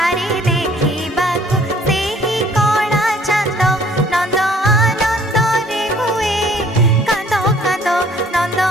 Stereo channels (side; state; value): both; normal; correlation 0.57